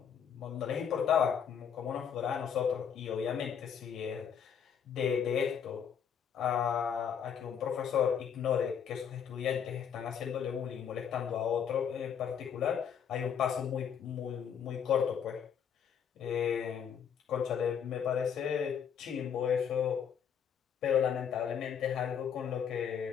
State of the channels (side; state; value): right; quieter; 7.8 dB